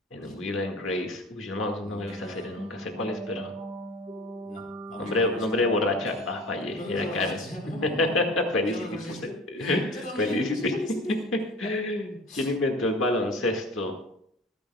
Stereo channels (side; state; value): both; normal; correlation 0.40